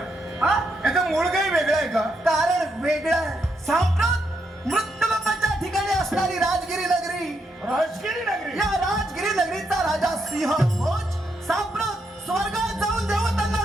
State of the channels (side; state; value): both; normal; correlation 0.80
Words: हा? याचं मूळ काही वेगळं आहे का? कारण वेगळं आहे. सांप्रत मृत्यूलोकाच्या ठिकाणी असणारी राजगिरी नगरी, राजगिरी नगरी. या राजगिरी नगरीचा राजा सिंह भोज सांप्रत स्वर्गात जाऊन देवतांना